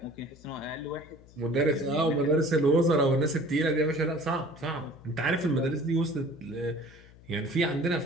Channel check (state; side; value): noise; left; hum, 23 dB below the sound